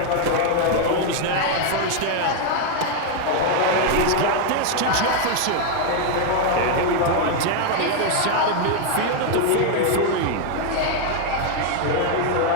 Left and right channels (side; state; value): both; different; correlation 0.00